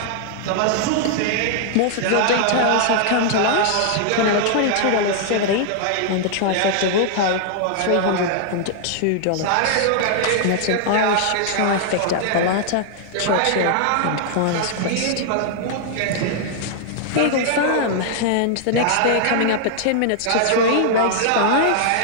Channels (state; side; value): different; both; correlation -0.01